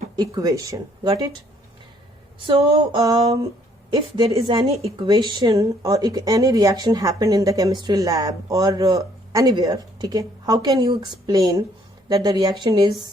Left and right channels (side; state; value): both; normal; correlation 0.64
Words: equation. Got it? So if there is any equation or any reaction happened in the chemistry lab or anywhere, okay, how can you explain that the reaction